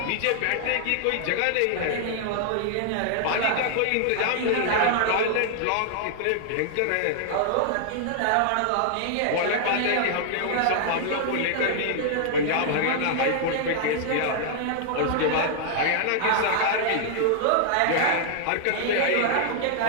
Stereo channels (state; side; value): different; both; correlation -0.01